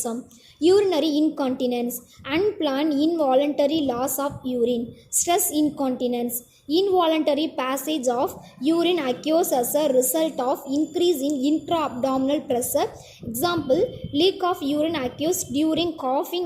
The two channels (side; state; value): both; identical; correlation 1.00